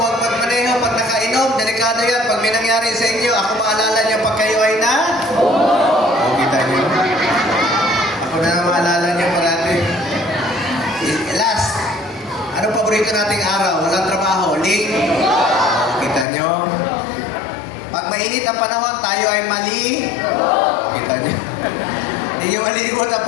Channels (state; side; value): drops out; right; at 16.2 s